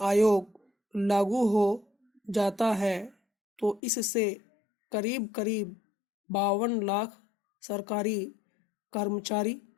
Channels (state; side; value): drops out; right; at 3.8 s